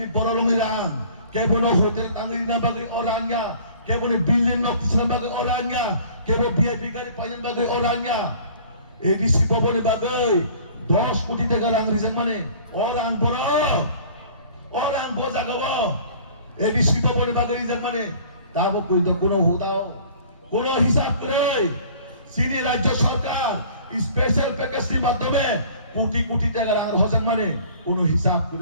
borolongiran kebono hotel tangirina bagi orangnya kebono building noktisna bagi orangnya kebono VIP gari panjang bagi orangnya edisi bobone bagai 10 কোটি টাকা rang rizang mane orang boja gawo edisi bobone bagai rizang mane tabo koito kono hotao kono hisab kore sini রাজ্য সরকার স্পেশাল প্যাকেজের মাধ্যমে কোটি কোটি টাকা rang hojang mane kono hisab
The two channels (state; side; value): inverted; both; correlation -0.49